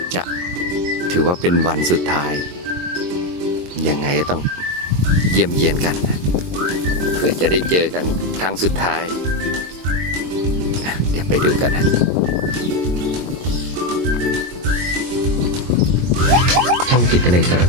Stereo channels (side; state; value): left; late; 22 ms